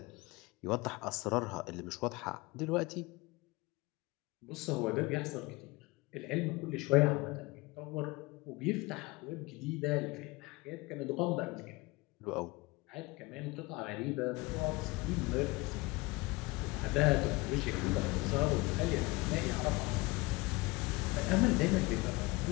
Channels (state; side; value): quieter; right; 23.1 dB